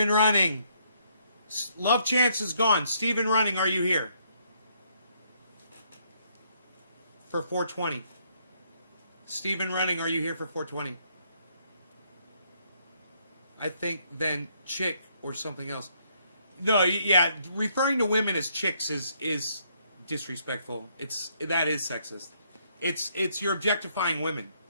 Running. Love Chance is gone. Steven Running, are you here? For 420. Steven Running, are you here for 420? I think then chick or something else. No, yeah, referring to women as chicks is disrespectful. That is sexist. It's you're objectifying women.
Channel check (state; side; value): inverted; both; correlation -0.70